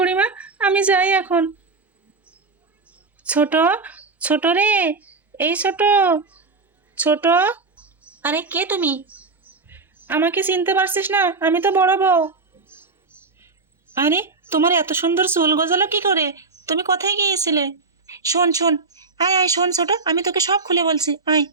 আমি যাই এখন। ছোট, ছোট রে, এই ছোট, ছোট। আরে কে তুমি? আমাকে চিনতে পারছিস না? আমি তো বড় বউ। আরে তোমার এত সুন্দর চুল গজালো কি করে? তুমি কোথায় গিয়েছিলে? শোন শোন, আয় আয়, শোন ছোট, আমি তোকে সব খুলে বলছি, আয়।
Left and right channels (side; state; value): left; quieter; 4.0 dB